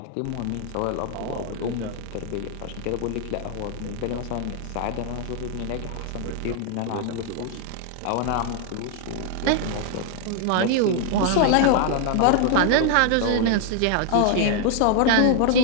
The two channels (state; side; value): different; both; correlation 0.00